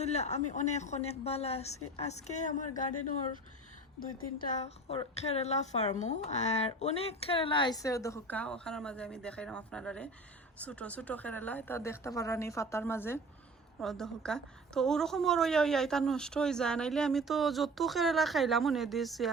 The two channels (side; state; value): both; normal; correlation 0.39